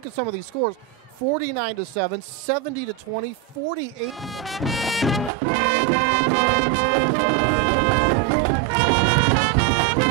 at some of these scores, 49-7, 70-20, 48.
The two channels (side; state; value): left; drops out; at 5.3 s